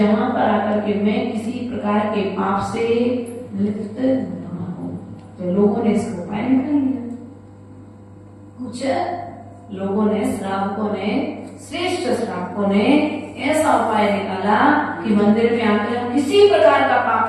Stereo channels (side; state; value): both; identical; correlation 1.00